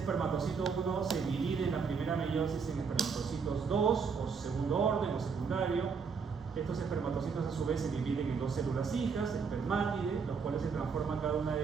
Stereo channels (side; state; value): left; quieter; 5.6 dB